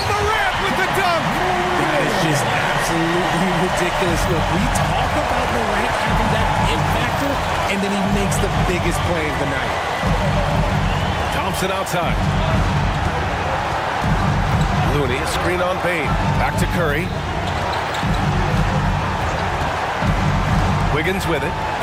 Morant with the dunk. That is just absolutely ridiculous. Look, we talk about Morant having that it factor, and then he makes the biggest play of the night. Thompson outside. Looney, a screen on Bane. Back to Curry. Wiggins with it.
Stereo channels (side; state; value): both; identical; correlation 1.00